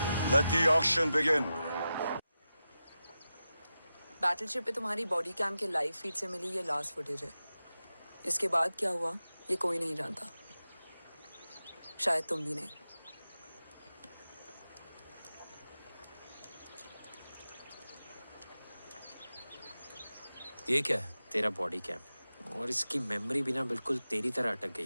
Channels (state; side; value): inverted; both; correlation -0.92